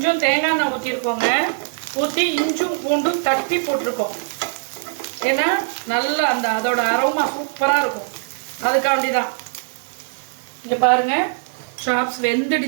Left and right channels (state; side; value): silent; left; digital silence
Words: தேங்காய் எண்ணெய் ஊற்றிருக்கோங்க. ஊற்றி இஞ்சும் பூண்டும் தட்டி போட்டிருக்கோம். ஏன்னா நல்லா அதோட அரோமா சூப்பராக இருக்கும். அதுக்காண்டி தான். இங்கே பாருங்கள், சாப்ஸ்